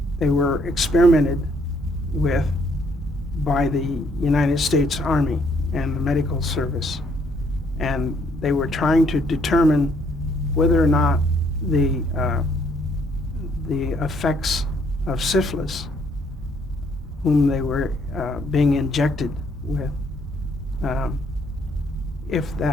were experimented with by the United States Army and the medical service, and they were trying to determine whether or not the effects of syphilis, whom they were being injected with, if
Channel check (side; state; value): both; normal; correlation 0.68